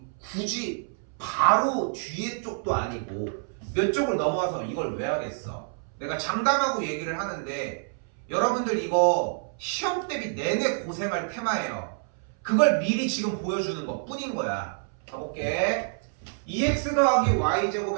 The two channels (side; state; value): left; silent; 60 dB below the other